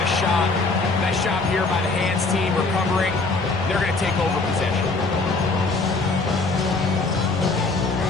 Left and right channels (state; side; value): quieter; right; 3.6 dB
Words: a shot. Nice job here by the hands team recovering. They're going to take over possession.